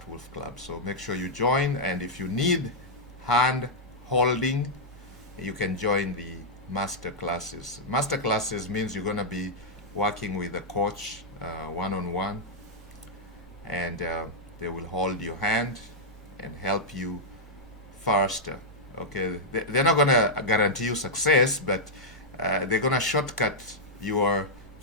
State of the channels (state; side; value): normal; both; correlation -0.07